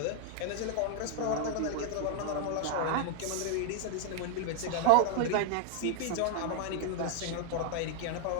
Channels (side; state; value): both; different; correlation 0.01